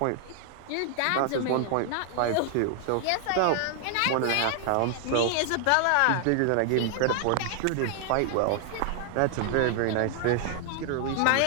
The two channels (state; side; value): different; both; correlation 0.00